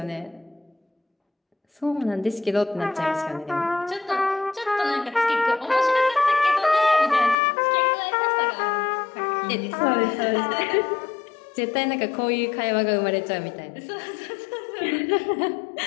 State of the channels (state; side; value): drops out; right; at 7.4 s